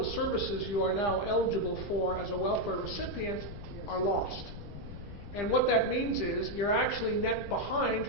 the services you are now eligible for as a welfare recipient are lost. And what that means is you're actually net behind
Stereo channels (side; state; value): left; noise; rumble, 11 dB below the sound